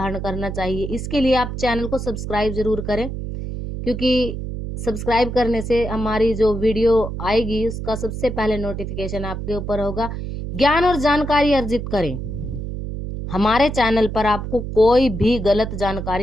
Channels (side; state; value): right; noise; hum, 6 dB below the sound